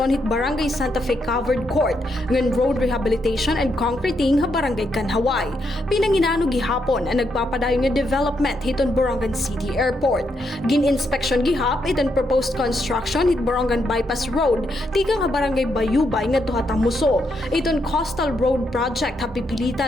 hit Barangay Santa Fe Covered Court ngan road rehabilitation and concreting ha Barangay Kanhaway. Pinanginano gihapon ang nagpapadayon nga development hiton Borongan City Airport. Gin-inspection gihap iton proposed construction hit Borongan Bypass Road tikang ha Barangay Bayubay nga tuha Tamuso. Iton Coastal Road Project ha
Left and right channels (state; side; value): normal; both; correlation 0.79